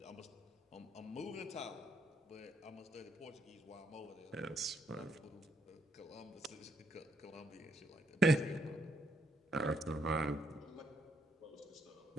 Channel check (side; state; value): both; normal; correlation 0.74